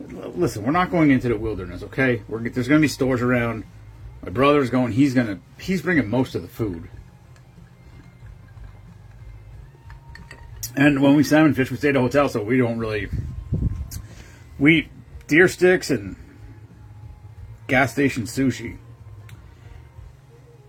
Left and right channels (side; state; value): both; identical; correlation 1.00